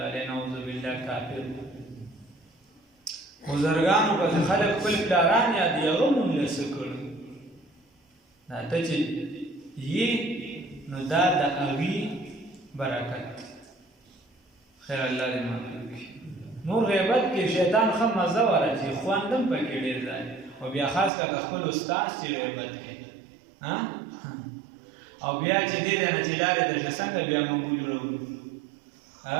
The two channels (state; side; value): drops out; left; at 21.1 s